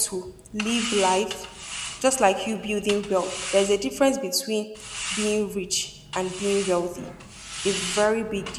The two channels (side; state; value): both; identical; correlation 1.00